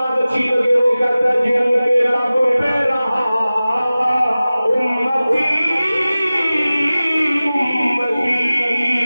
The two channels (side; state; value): both; inverted; correlation -0.97